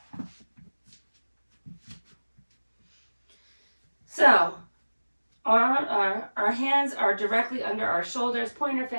So, our hands are directly under our shoulders, pointer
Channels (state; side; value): inverted; both; correlation -1.00